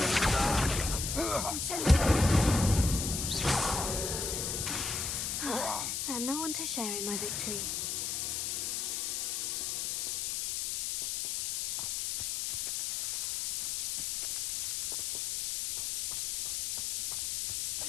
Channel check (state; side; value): noise; left; hiss, 1 dB below the sound